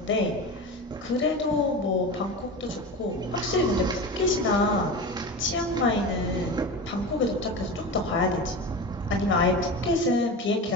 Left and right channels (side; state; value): both; normal; correlation 0.27